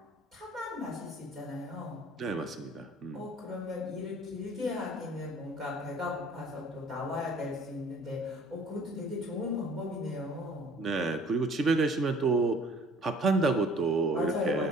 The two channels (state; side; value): normal; both; correlation 0.53